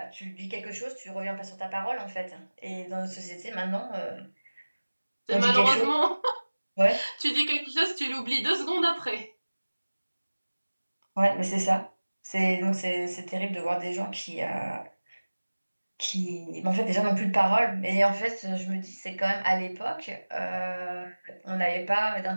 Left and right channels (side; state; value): both; inverted; correlation -1.00